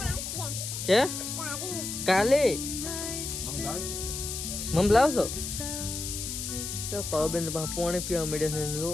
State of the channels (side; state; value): left; noise; hiss, 5 dB below the sound